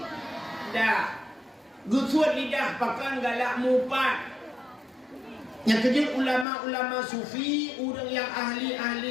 Gusut lidah pakan galak mupat. Yang kejut ulama-ulama sufi, orang yang ahli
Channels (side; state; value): right; drops out; at 6.5 s